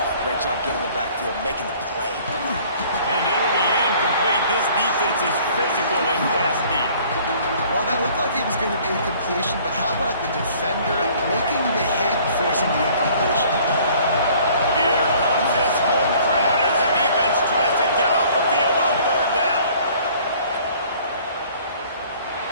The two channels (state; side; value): inverted; both; correlation -0.55